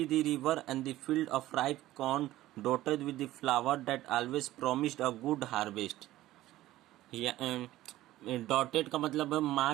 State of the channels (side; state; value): left; quieter; 15.5 dB